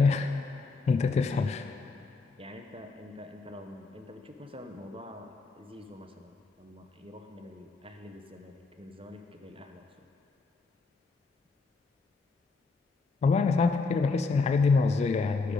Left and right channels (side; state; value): right; quieter; 4.2 dB